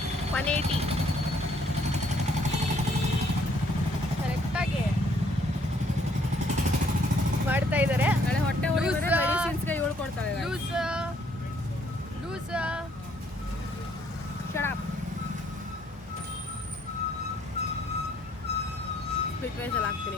180 ಕರೆಕ್ಟಾಗಿ ಮಾಡ್ತಾ ಇದ್ದಾರೆ. ನಾಳೆ ಹೊಟ್ಟೆ ಮೆಡಿಸಿನ್ಸ್ಗೆ ಇವಳು ಕೊಡ್ತಾಳೆ. ಲೂಸ್ ಶರಾಬ್ ಸ್ಪಿಟ್ ವೈಸಲ್ಲಿ ಹಾಕ್ತೀನಿ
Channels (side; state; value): both; normal; correlation 0.66